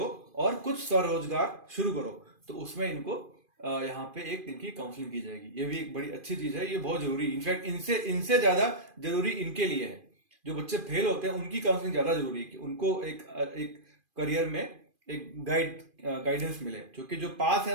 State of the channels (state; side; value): late; left; 2.5 ms